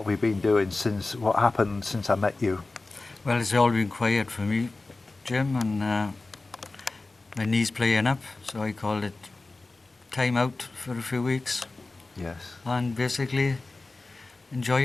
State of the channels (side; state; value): right; quieter; 3.3 dB